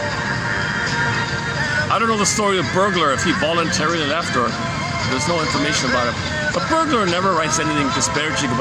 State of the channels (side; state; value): both; identical; correlation 1.00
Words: I don't know the story of Bergler, if he voluntarily left or there's no information about it. But Bergler never writes anything disparaging